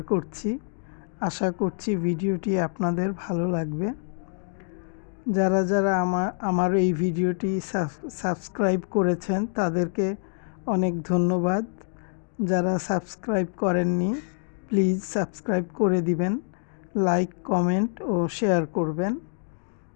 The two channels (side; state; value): right; silent; 57 dB below the other